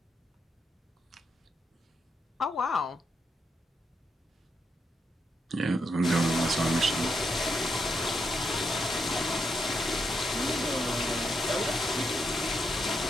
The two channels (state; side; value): normal; both; correlation 0.81